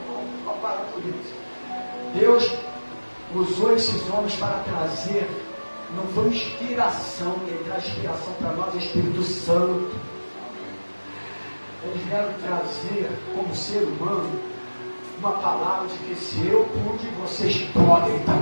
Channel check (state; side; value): inverted; both; correlation -1.00